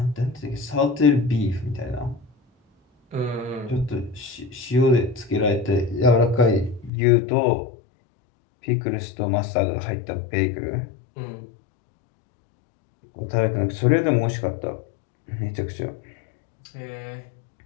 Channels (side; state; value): right; drops out; at 6.9 s